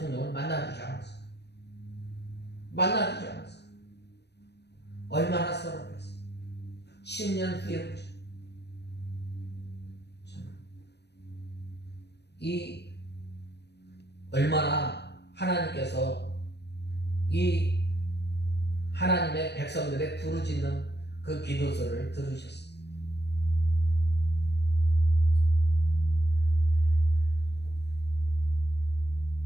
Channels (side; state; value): right; late; 0.49 ms